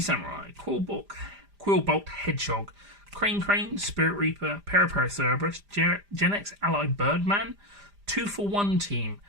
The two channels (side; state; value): left; late; 5.0 ms